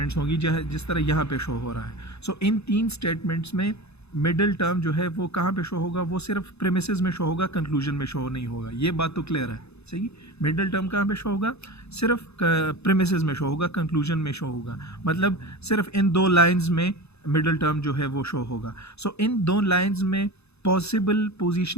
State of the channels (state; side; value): late; right; 0.79 ms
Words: होंगी जिस तरह यहाँ पे शो हो रहा है। सो इन 3 स्टेटमेंट्स में मिडल टर्म जो है वो कहाँ पे शो होगा? वो सिर्फ प्रेमिसेस में शो होगा, कंक्लूजन में शो नहीं होगा। ये बात तो क्लियर है। सही, मिडल टर्म कहाँ पे शो होगा? सिर्फ प्रेमिसेस में शो होगा, कंक्लूजन में शो होगा, मतलब सिर्फ इन 2 लाइन्स में मिडल टर्म जो है वो शो होगा। सो इन 2 लाइन्स में पॉसिबल